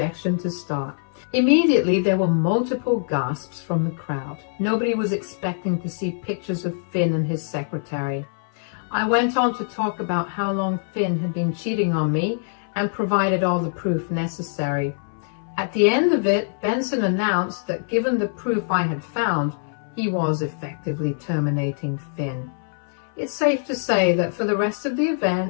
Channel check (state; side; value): silent; right; 61 dB below the other